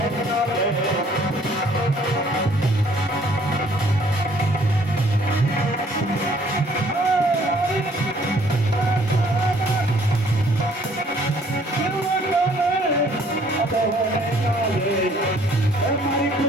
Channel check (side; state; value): both; normal; correlation 0.60